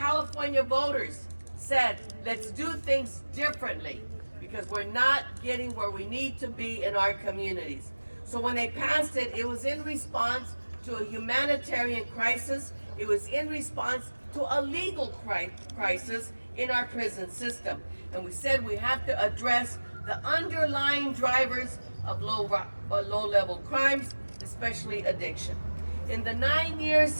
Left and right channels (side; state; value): both; inverted; correlation -1.00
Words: voters said, let's do things differently because we're not getting where we need to be in our communities. So when they passed it, it was in response to a humanitarian crisis. It was in response to a legal crisis in our prison system. And we said we have to address the underlying drivers of low-level crimes, especially addiction. In the 9 years